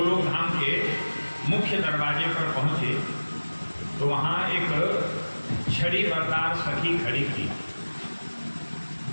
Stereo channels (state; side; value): inverted; both; correlation -1.00